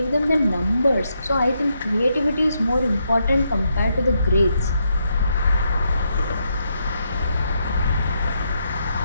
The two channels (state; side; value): inverted; both; correlation -0.79